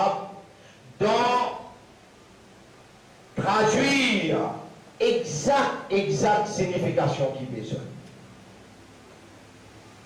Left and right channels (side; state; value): both; identical; correlation 1.00